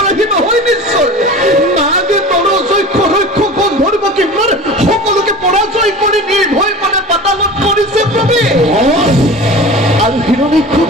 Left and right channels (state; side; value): normal; both; correlation 0.36